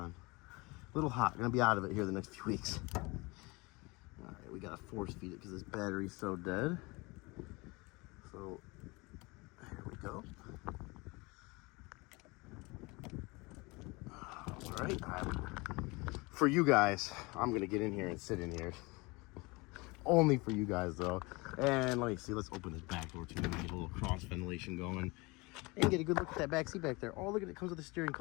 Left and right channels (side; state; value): right; quieter; 25.3 dB